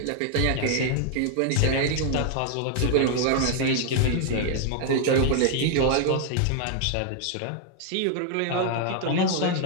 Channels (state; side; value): different; both; correlation 0.00